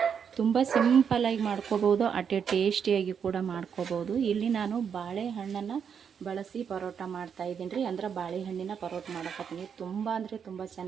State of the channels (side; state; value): left; quieter; 7.3 dB